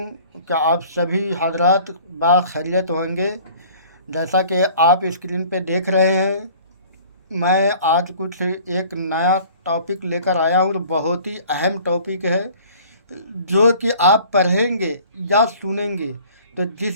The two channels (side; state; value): both; inverted; correlation -0.50